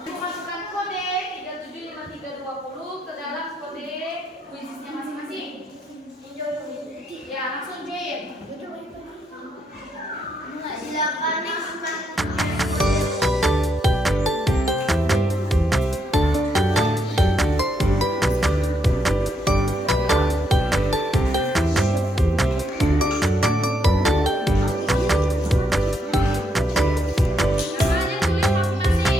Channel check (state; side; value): normal; both; correlation 0.78